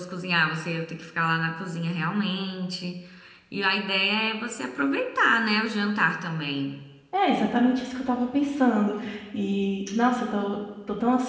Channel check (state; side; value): identical; both; correlation 1.00